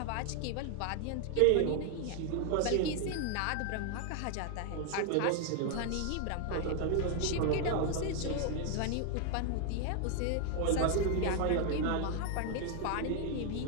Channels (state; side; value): different; both; correlation 0.00